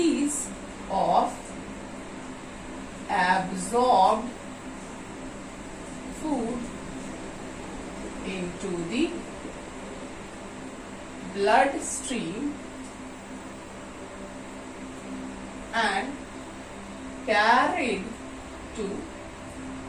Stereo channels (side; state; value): both; identical; correlation 1.00